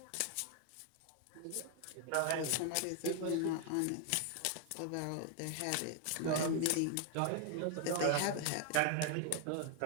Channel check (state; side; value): different; both; correlation 0.00